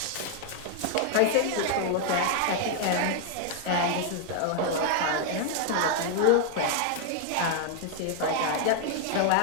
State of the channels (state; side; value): different; both; correlation 0.00